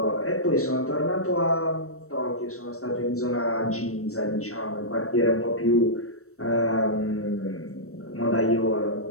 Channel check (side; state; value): right; late; 0.64 ms